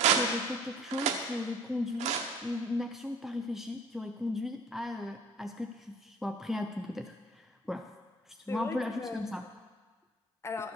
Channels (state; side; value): normal; both; correlation 0.48